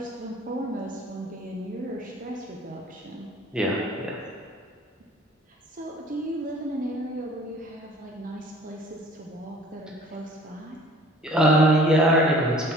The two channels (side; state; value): both; normal; correlation 0.51